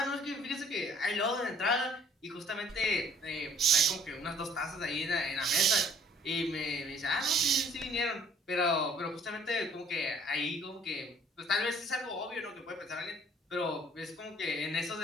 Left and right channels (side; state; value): both; normal; correlation 0.57